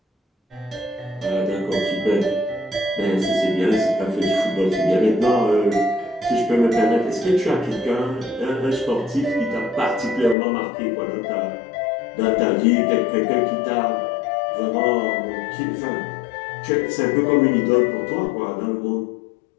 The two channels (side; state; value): right; drops out; at 10.4 s